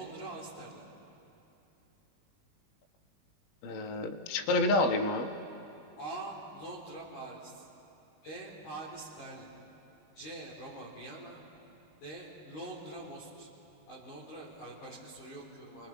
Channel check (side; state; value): right; late; 20 ms